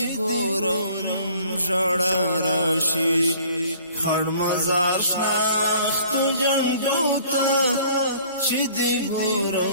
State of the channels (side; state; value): both; inverted; correlation -0.54